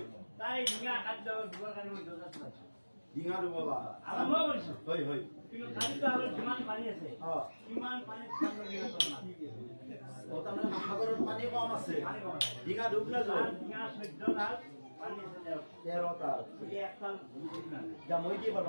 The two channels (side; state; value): both; inverted; correlation -1.00